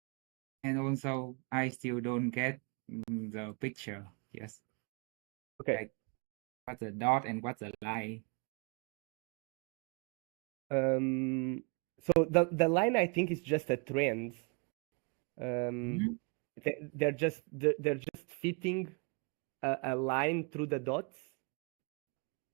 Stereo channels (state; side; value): quieter; left; 33.4 dB